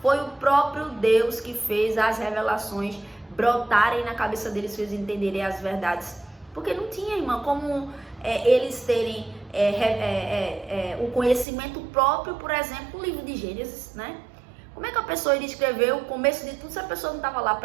foi o próprio Deus que fez as revelações brotarem na cabeça deles, fez entenderem as verdades. Porque não tinha, irmã, como eles terem o conhecimento próprio, por exemplo, o livro de Gênesis, né? Como é que a pessoa iria escrever o começo de tudo se a pessoa não estava lá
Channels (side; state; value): left; drops out; at 11.5 s